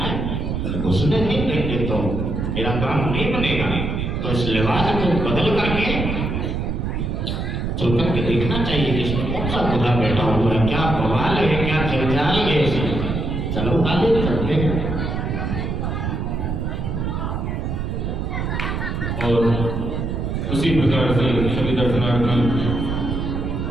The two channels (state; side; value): noise; right; rumble, 2 dB below the sound